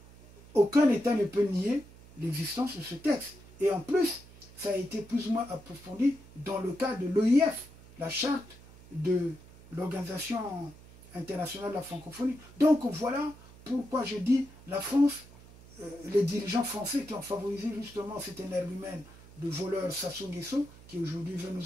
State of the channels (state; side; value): noise; right; hum, 21 dB below the sound